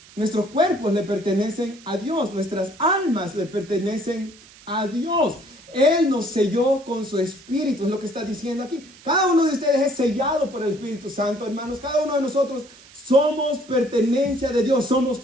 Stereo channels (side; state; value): right; noise; hiss, 23 dB below the sound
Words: Nuestros cuerpos le pertenecen a Dios, nuestras almas le pertenecen a Dios. Él nos selló con su Espíritu, es lo que está diciendo aquí. Cada uno de ustedes es sellado por el Espíritu Santo, hermanos. Cada uno de nosotros somos pertenencia de Dios, somos